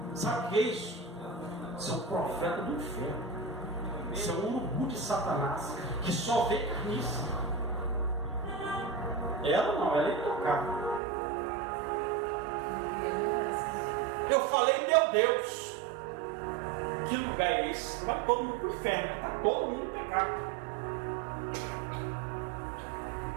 Sabe o que é isso? Isso é um profeta do inferno. Isso é um urubu de Satanás que só vê carniça. Ela não, ela é intocável. Eu falei: meu Deus, que lugar é esse? Vai todo mundo para o inferno, está todo mundo em pecado.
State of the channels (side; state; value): left; drops out; at 11.0 s